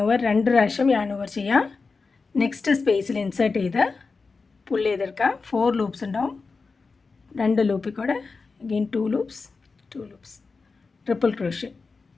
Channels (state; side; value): quieter; right; 4.4 dB